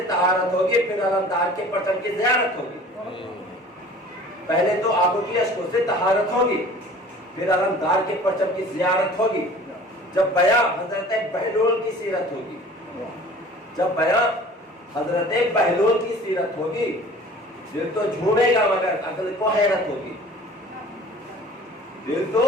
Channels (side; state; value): both; normal; correlation 0.46